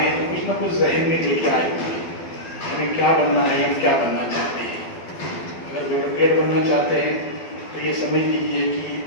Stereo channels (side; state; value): right; late; 12 ms